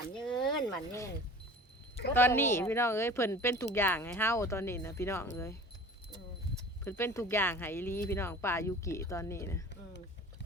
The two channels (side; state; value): both; normal; correlation 0.42